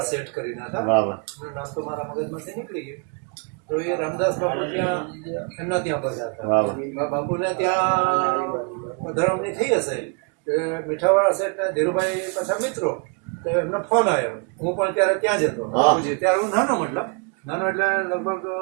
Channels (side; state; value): left; quieter; 36.4 dB